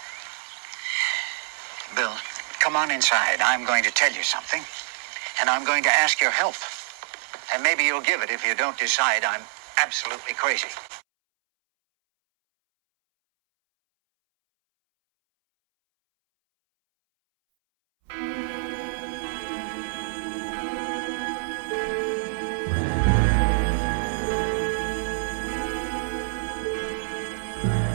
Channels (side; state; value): left; silent; 61 dB below the other